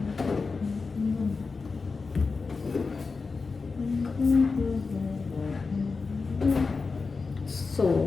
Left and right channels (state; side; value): quieter; right; 4.4 dB